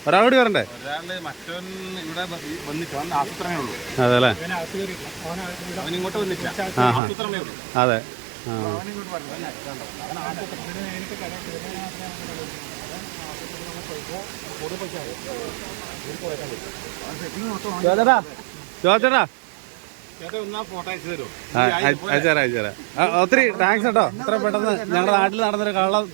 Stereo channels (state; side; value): drops out; left; at 7.0 s